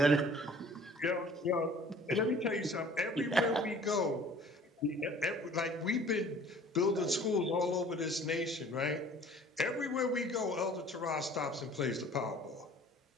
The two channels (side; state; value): both; normal; correlation 0.50